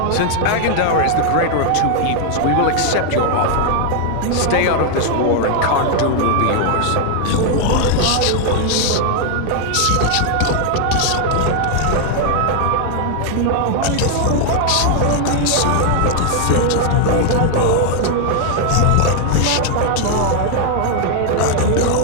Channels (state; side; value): different; both; correlation 0.00